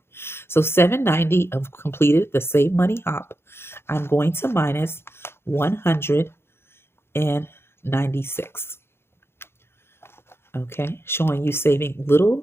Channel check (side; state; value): right; late; 0.12 ms